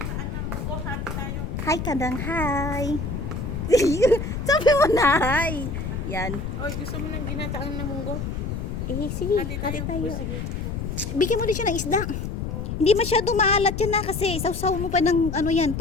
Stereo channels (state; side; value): noise; left; rumble, 4 dB below the sound